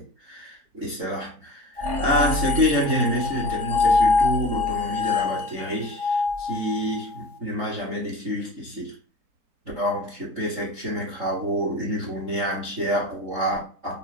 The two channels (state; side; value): late; left; 3.8 ms